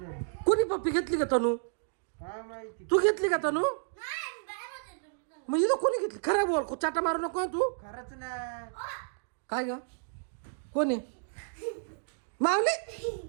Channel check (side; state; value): left; silent; digital silence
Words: कोणी पप्पी घेतली का तनू? काय माहिती. तू घेतली का तनू? मग इथं कोणी घेतली? खरं बोल चाटा मारू नको हं तू. खरंच ना. काय ग कोणी माऊली